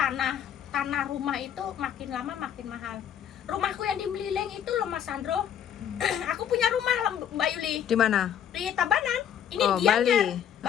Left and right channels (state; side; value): quieter; right; 9.3 dB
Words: rumah itu makin lama makin mahal. Rumahku yang di Melileng itu loh Mas Sandro. Aku punya rumah Mbak Yuli Di mana? di Tabanan. Ini Oh, Gianyar.